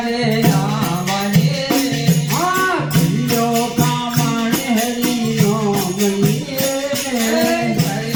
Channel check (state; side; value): noise; right; rumble, 23 dB below the sound